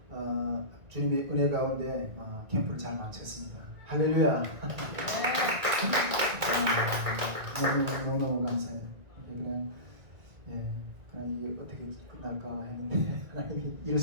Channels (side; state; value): left; late; 1.9 ms